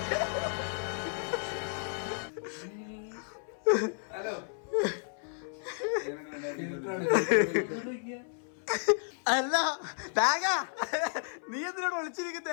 ഹലോ, അല്ല നീ എന്തിനോട്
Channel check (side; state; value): right; silent; 56 dB below the other